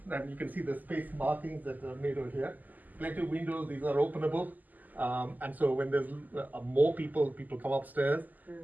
and you can see the space markings that are made over here. Plenty of windows, these are openable. And so when there's more people come upstairs,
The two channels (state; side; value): late; left; 0.082 ms